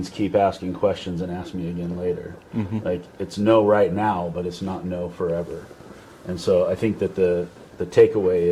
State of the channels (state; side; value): identical; both; correlation 1.00